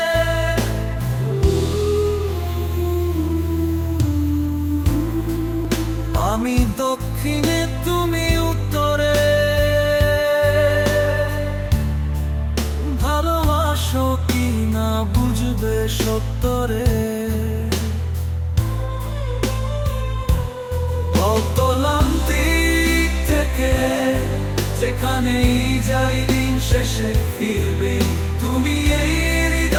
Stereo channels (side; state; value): both; identical; correlation 1.00